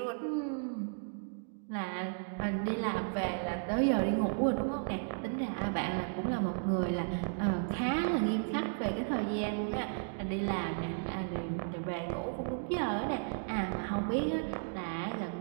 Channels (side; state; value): left; silent; digital silence